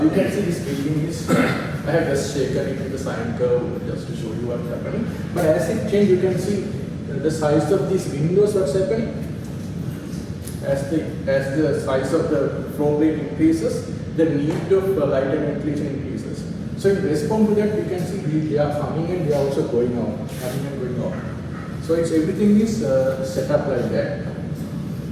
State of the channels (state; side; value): identical; both; correlation 1.00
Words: You can see this building is, I have just shaken it in the sine curve just to show you what's happening. But as it changes, you can see the size of these windows, what's happening. As the size of the floor plate increases, the need of light and ventilation increases. So in response to that, you can see they are coming and they are also going out, coming and going out. So everything is set up like that.